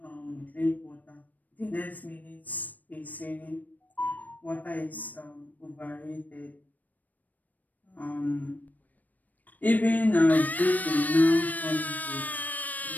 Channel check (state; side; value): late; right; 0.081 ms